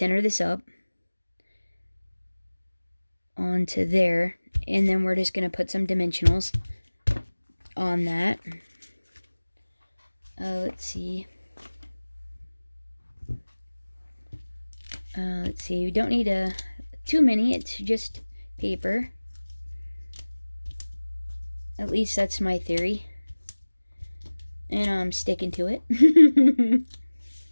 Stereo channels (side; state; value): both; inverted; correlation -1.00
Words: this up onto there, and then we're just going to put some dimensionals on that. Let's see. We don't need too many. It's just paper. At least that's my theory. And I'm sticking to it.